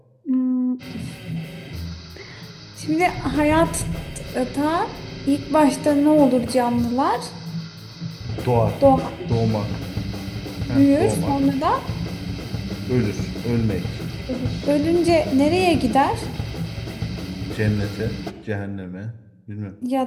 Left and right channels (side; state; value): both; identical; correlation 1.00